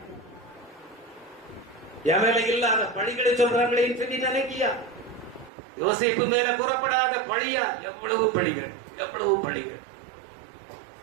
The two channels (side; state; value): left; drops out; at 5.5 s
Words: என் மேல இல்லாத பழிகளை சொல்றாங்களே சொல்லி நினைக்கியா? யோசேப்பு மேல கூறப்படாத பழியா? எவ்வளவு பழிகள், எவ்வளவு பழிகள்.